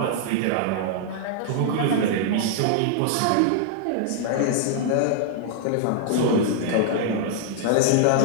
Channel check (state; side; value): different; both; correlation -0.01